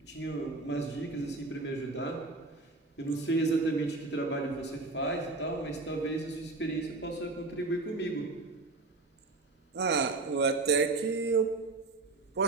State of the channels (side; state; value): left; quieter; 3.4 dB